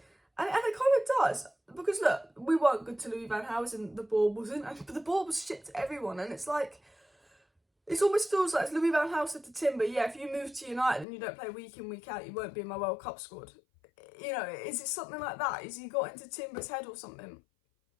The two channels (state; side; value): drops out; right; at 11.1 s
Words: And it kind of does, because look, we weren't good to Louis van Gaal, and the ball wasn't, but the ball was shit to everyone, and it's like, it almost feels like Louis van Gaal said to Timber, yeah, if you move to United and you don't play week in, week out, you won't be in my World Cup squad. You know, is it something like that? Is he got into Timber's head or something?